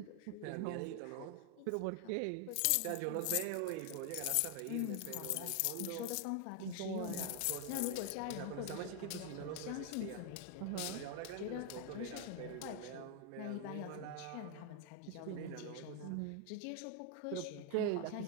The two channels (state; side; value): different; both; correlation 0.00